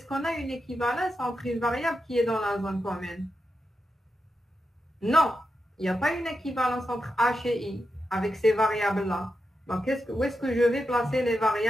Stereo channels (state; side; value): normal; both; correlation 0.88